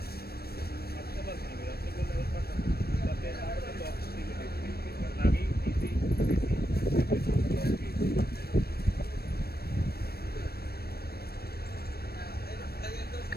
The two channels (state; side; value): late; right; 0.46 ms